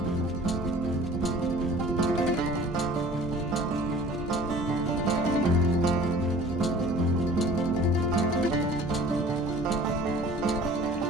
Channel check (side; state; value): both; normal; correlation 0.47